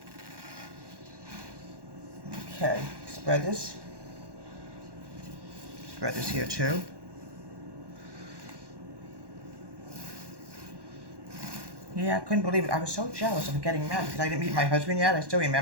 Okay, spread this. Spread this here too. Yeah, I couldn't believe it. I was so jealous of getting married because I didn't meet my husband yet. I still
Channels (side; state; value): left; late; 1.1 ms